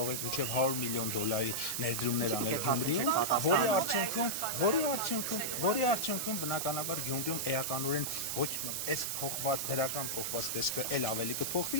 եք մինչեւ 100 միլիոն դոլարի ներդրումներ անել Գյումրիում, որի արդյունքում բնականաբար Գյումրիում էականորեն ոչ այս դրական փոխված տեսքը էլ ավելի կփոխվի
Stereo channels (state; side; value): noise; right; hiss, 2 dB below the sound